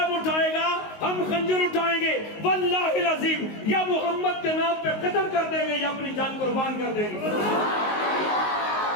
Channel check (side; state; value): right; late; 19 ms